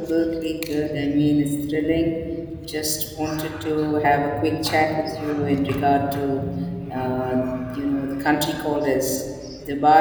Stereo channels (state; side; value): identical; both; correlation 1.00